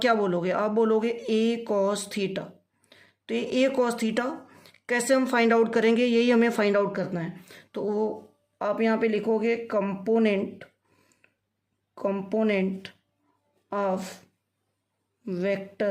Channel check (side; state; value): both; identical; correlation 1.00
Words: क्या बोलोगे? आप बोलोगे ए कॉस थीटा। तो ये ए कॉस थीटा कैसे हम फाइंड आउट करेंगे, यही हमें फाइंड आउट करना है। तो आप यहाँ पे लिखोगे component of